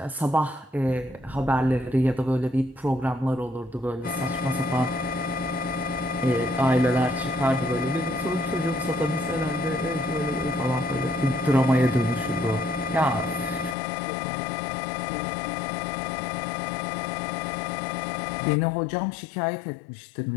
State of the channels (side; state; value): right; drops out; at 13.8 s